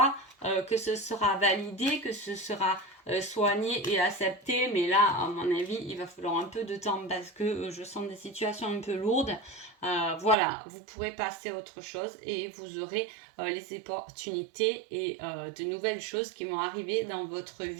que ce sera validé, que ce sera soigné et accepté, mais là, à mon avis, il va falloir un peu de temps parce que je sens des situations un peu lourdes. Voilà, vous pourrez passer à autre chose et vous aurez les opportunités et de nouvelles choses qui vont arriver dans votre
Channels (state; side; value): drops out; left; at 10.4 s